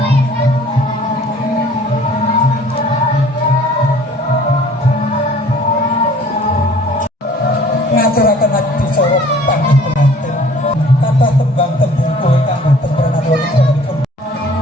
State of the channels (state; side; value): normal; both; correlation 0.52